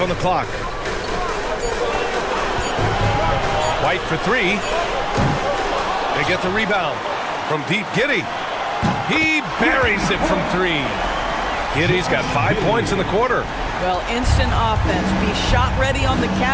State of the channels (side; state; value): both; identical; correlation 1.00